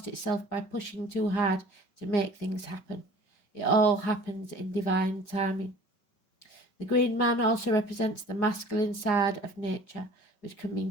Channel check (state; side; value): late; right; 5.3 ms